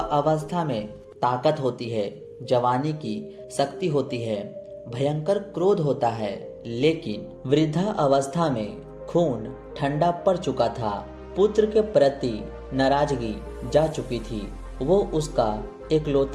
में ताकत होती है, जवानी की शक्ति होती है, भयंकर क्रोध होता है। लेकिन वृद्धा अवस्था में खून ठंडा पड़ चुका था। पुत्र के प्रति नाराजगी जा चुकी थी। वो उसका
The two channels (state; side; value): identical; both; correlation 1.00